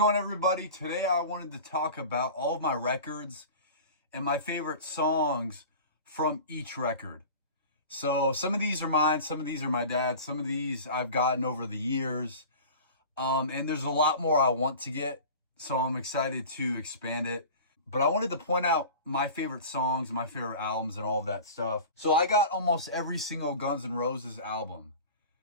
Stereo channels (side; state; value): both; inverted; correlation -0.37